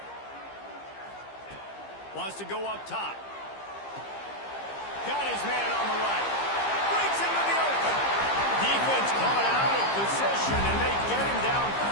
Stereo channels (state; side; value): late; right; 15 ms